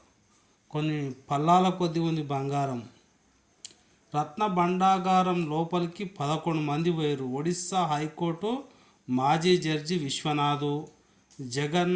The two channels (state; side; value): identical; both; correlation 1.00